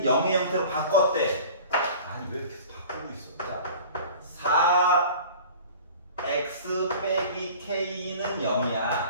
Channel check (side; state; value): both; inverted; correlation -0.43